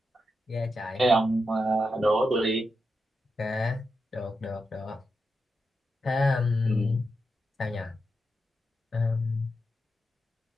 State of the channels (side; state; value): both; normal; correlation 0.87